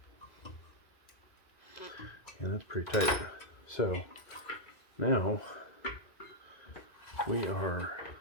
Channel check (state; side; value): late; right; 2.2 ms